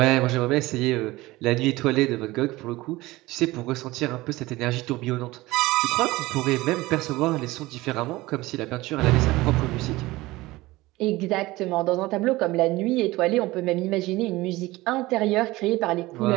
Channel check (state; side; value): quieter; left; 19.5 dB